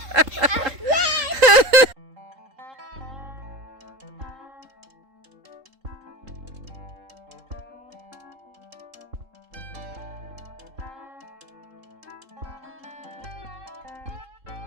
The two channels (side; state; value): left; late; 3.7 ms